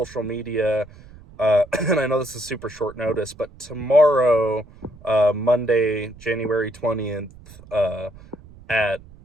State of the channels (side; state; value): right; noise; rumble, 22 dB below the sound